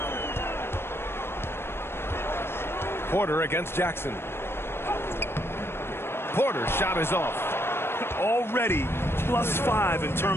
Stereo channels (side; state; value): right; late; 0.12 ms